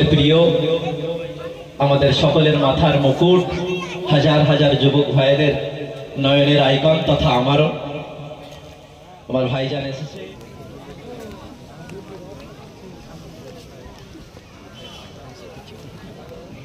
প্রিয় আমাদের সকলের মাথার মুকুট হাজার হাজার যুবক ভাইদের নয়নের আইকন তথা আমারও আমার ভাইজান এসেছে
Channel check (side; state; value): both; identical; correlation 1.00